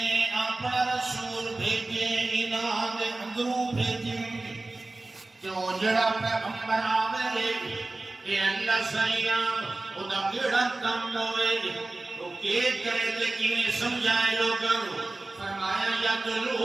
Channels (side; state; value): left; quieter; 3.0 dB